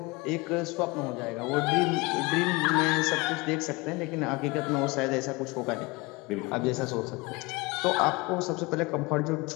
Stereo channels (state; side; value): quieter; right; 24.8 dB